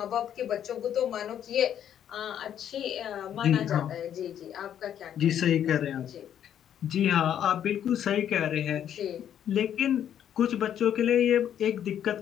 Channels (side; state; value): right; quieter; 9.9 dB